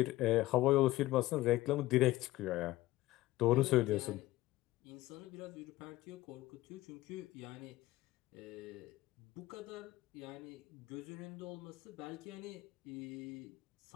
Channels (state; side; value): quieter; right; 17.3 dB